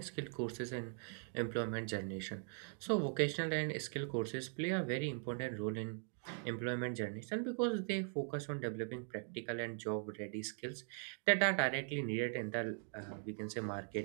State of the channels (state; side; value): silent; left; 51 dB below the other